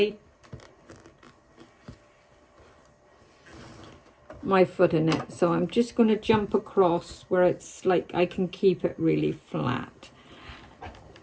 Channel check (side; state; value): both; identical; correlation 1.00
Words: foot in it. So I'm just going to jump across where it's like I can keep it really flat.